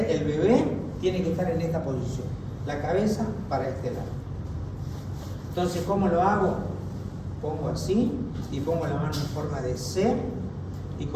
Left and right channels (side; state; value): both; identical; correlation 1.00